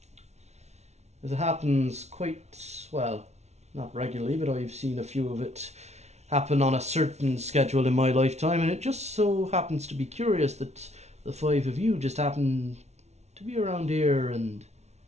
As it happens quite, well, not regularly, but I've seen a few of it happen on a certain schedule in my lifetime, and it just so happens to be curious that the five of you just happen to be around here and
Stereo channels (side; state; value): left; late; 0.32 ms